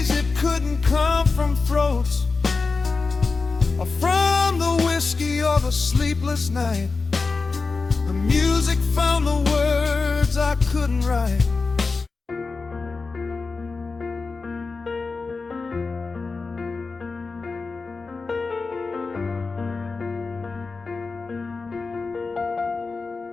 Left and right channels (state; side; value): quieter; right; 4.2 dB